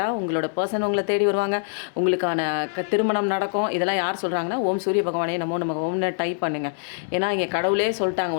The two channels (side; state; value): right; silent; digital silence